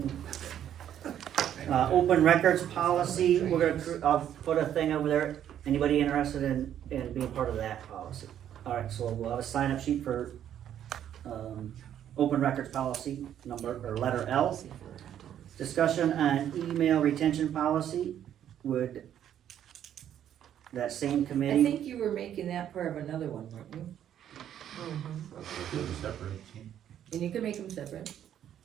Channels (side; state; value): left; quieter; 10.3 dB